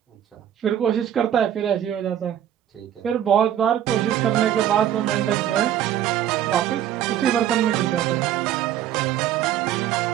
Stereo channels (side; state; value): left; quieter; 10.8 dB